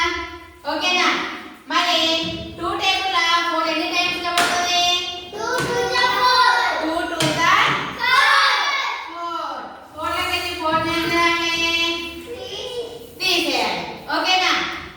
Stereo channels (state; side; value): identical; both; correlation 1.00